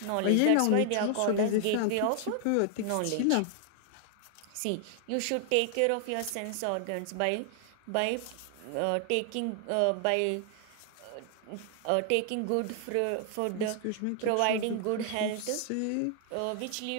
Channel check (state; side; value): different; both; correlation 0.00